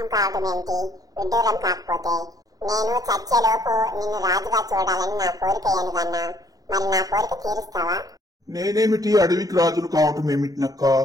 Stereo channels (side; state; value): left; late; 0.18 ms